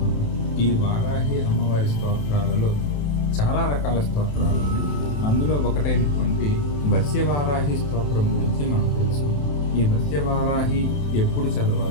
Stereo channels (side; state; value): right; late; 27 ms